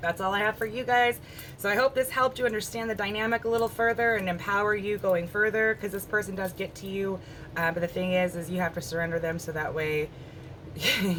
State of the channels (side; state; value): both; identical; correlation 1.00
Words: that's all I have for you guys. So I hope this helped you understand the dynamic a little further and empower you going further, because this person does get to you. But the thing is you have to surrender them, so that way